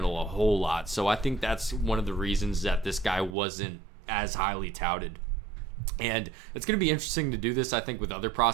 a whole lot. So I think that's one of the reasons that this guy wasn't as highly touted. And it's going to be interesting to do this, I think, with other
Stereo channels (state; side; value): drops out; left; at 3.4 s